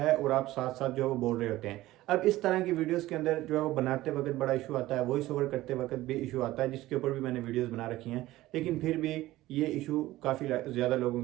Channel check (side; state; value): left; quieter; 16.6 dB